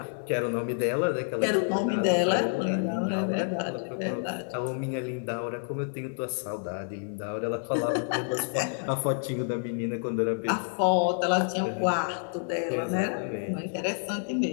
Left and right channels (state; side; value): silent; right; 59 dB below the other